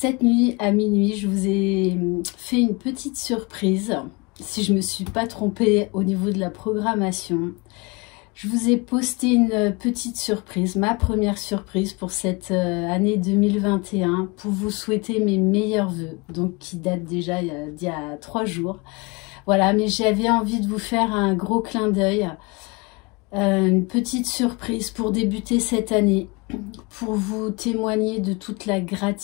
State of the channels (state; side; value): quieter; right; 27.3 dB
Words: nuit à minuit, je vous ai fait une petite surprise, si je ne me suis pas trompée au niveau de la programmation. Je vous ai posté une petite surprise, ma première surprise pour cette année 2021, pour vous souhaiter mes meilleurs vœux, donc qui datent déjà d'il y a 3 jours. Voilà, mais j'avais envie de vous faire un gros clin d'œil, une petite surprise pour débuter cette année, pour vous témoigner de toute la